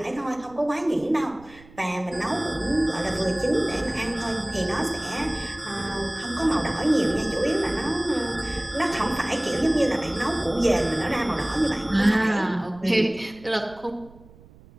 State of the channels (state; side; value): noise; right; rumble, 23 dB below the sound